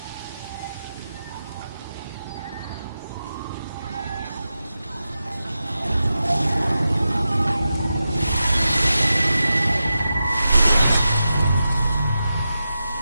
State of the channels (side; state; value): both; inverted; correlation -0.90